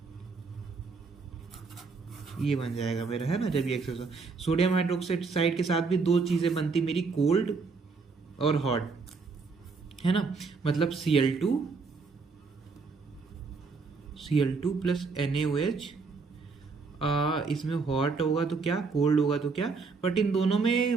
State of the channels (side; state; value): left; quieter; 4.6 dB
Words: ये बन जाएगा मेरा, है ना। जब ये एक्सेस, सोडियम हाइड्रोक्साइड के साथ भी दो चीजें बनती मेरी, कोल्ड और हॉट, है ना। मतलब Cl2 प्लस NaOH, इसमें हॉट होगा तो क्या, कोल्ड होगा तो क्या, बट इन दोनों में